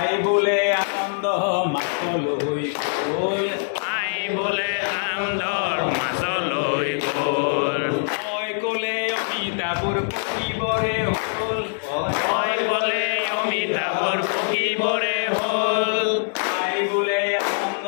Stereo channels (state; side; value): silent; right; digital silence